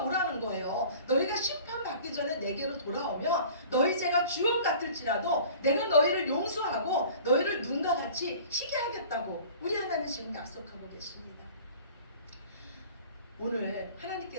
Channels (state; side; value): inverted; both; correlation -0.45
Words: 거예요. 너희가 심판받기 전에 내게로 돌아오면 너희 죄가 주홍 같을지라도 내가 너희를 용서하고 너희를 눈과 같이 희게 하겠다고 우리 하나님 지금 약속하고 계십니다. 오늘